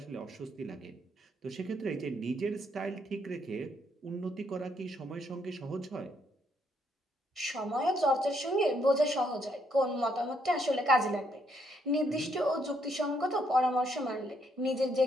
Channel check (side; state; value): both; normal; correlation 0.73